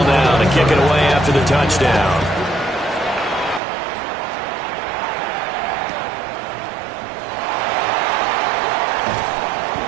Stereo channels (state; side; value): drops out; left; at 3.6 s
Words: now to kick it away after for the touchdown.